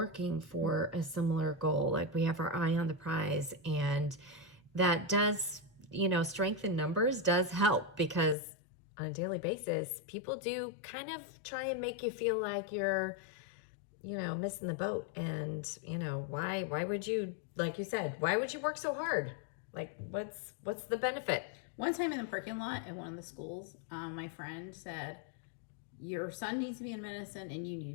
for a similar goal. Like, we have our eye on the prize, and that does, strength in numbers does help, because on a daily basis, people do kind of try and make you feel like you're, missing the boat. And, why would you, like you said, why would you work so hard? Like, what's the benefit? One time in the parking lot at one of the schools, my friend said, your son needs to be in medicine and you need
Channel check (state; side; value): drops out; right; at 8.3 s